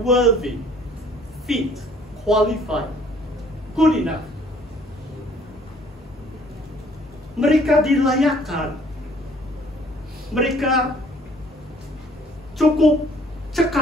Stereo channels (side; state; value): both; normal; correlation 0.58